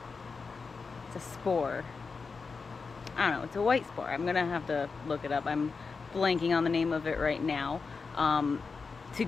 a spore. I don't know. It's a white spore. I'm gonna have to look it up. I'm blanking on the name of it right now. To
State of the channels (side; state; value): right; quieter; 4.7 dB